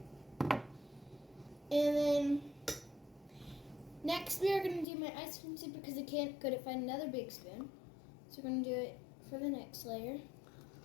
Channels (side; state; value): right; drops out; at 4.9 s